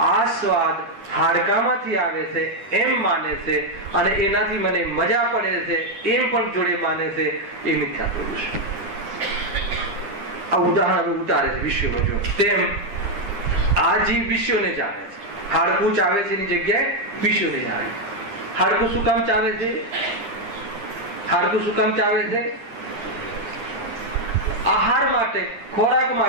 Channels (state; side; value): late; left; 9.9 ms